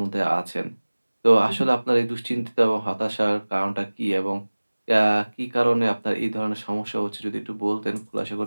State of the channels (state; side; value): inverted; both; correlation -1.00